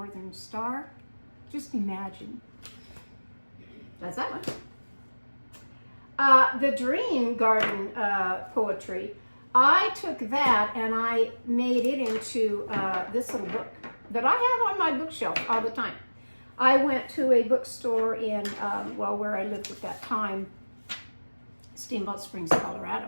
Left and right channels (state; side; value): inverted; both; correlation -1.00